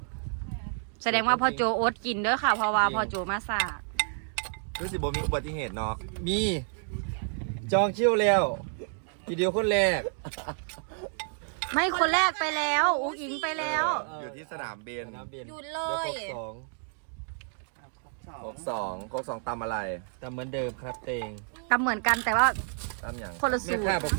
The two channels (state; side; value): silent; left; 58 dB below the other